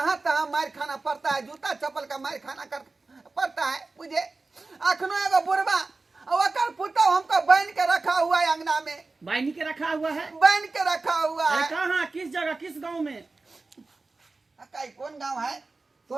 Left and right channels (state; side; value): quieter; left; 3.6 dB